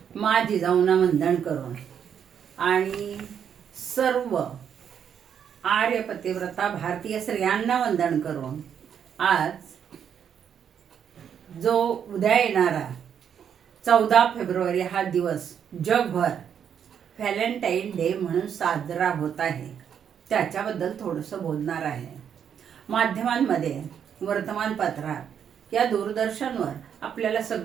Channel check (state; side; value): quieter; left; 8.3 dB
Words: मा जिजाऊंना वंदन करून आणि सर्व आर्य पतिव्रता भारतीय स्त्रियांना वंदन करून आज जो उद्या येणारा 14 फेब्रुवारी हा दिवस जगभर व्हॅलेंटाईन डे म्हणून साजरा होत आहे, त्याच्याबद्दल थोडंसं बोलणार आहे. माध्यमांमध्ये, वर्तमानपत्रात या दूरदर्शनवर आपल्याला